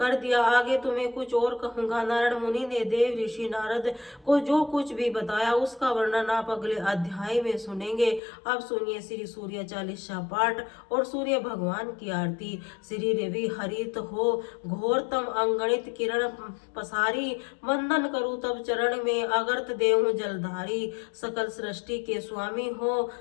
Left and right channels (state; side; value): drops out; right; at 8.2 s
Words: दिया, आगे तुम्हें कुछ और कहूंगा। नारायण मुनि ने देव ऋषि नारद को जो कुछ भी बताया उसका वर्णन आप अगले अध्याय में सुनेंगे। अब सुनिए श्री सूर्य चालीसा पाठ और सूर्य भगवान की आरती। श्री रवि हरित हो घोरतम अंगणित किरण पसारी, वंदन करूं तब चरण में अगर्त देहूं जलधारी। सकल सृष्टि के स्वामी हो